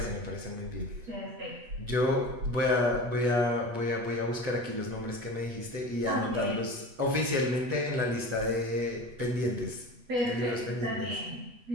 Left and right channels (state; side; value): late; left; 8.2 ms